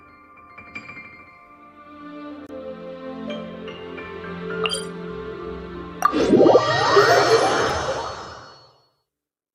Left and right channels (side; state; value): both; identical; correlation 1.00